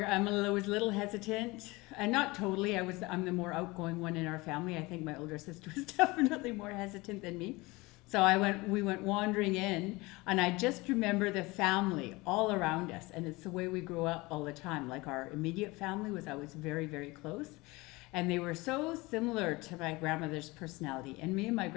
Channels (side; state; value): right; quieter; 22.9 dB